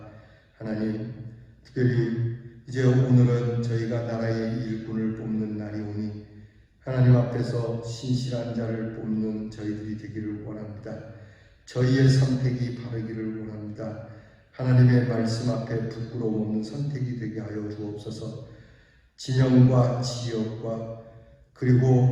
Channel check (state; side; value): identical; both; correlation 1.00